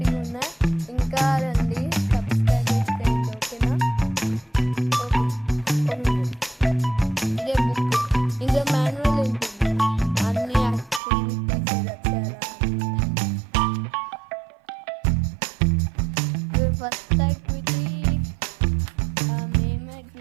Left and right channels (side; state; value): left; drops out; at 11.0 s